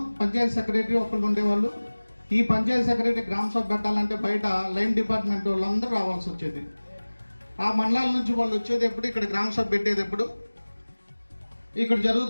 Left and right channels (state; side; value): inverted; both; correlation -1.00